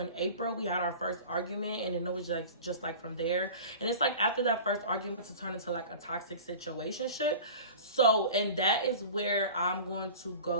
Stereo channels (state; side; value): inverted; both; correlation -0.37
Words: April, we had our first argument, and then it was like just like from there. And it's like after that first argument to turn into like a toxic situationship. So, and that is where I'm going to